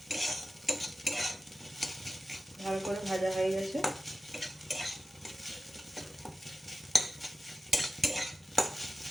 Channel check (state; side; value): normal; both; correlation 0.94